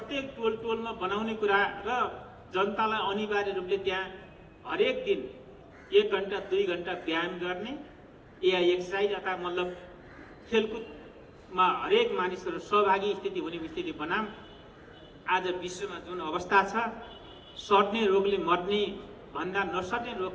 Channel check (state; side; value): identical; both; correlation 1.00